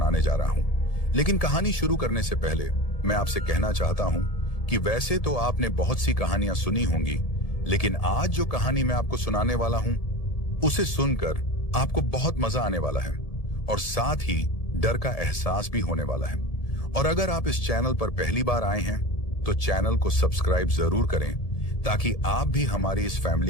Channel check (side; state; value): right; late; 1.7 ms